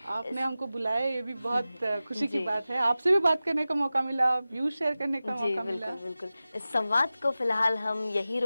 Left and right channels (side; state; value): both; inverted; correlation -0.95